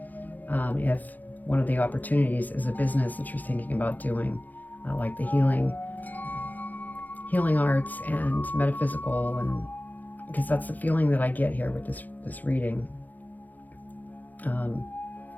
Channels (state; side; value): late; right; 0.083 ms